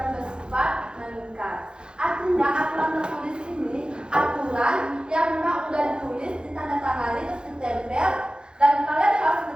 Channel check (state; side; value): late; left; 0.049 ms